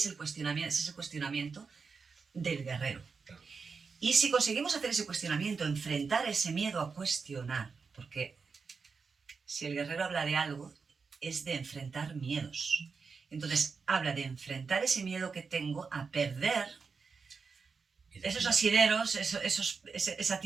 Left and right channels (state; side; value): quieter; left; 5.2 dB